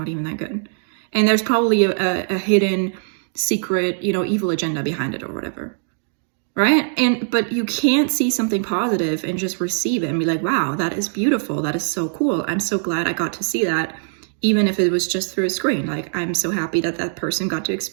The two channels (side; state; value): left; silent; 65 dB below the other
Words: even that good. And there's probably a hidden secret, you know, evil agenda behind it or whatever. Right? But you can't see something positive and just receive it and be like, wow, that is beautiful. That is so cool. I'm so glad I got to see that, even if it was just through a screen. Like, I'm so happy that that person got to